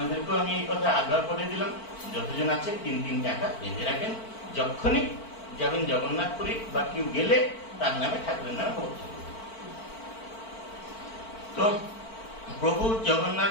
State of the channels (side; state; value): right; late; 4.5 ms